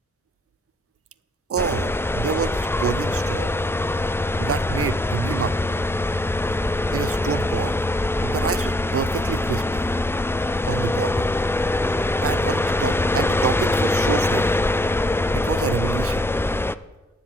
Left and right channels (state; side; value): normal; both; correlation 0.66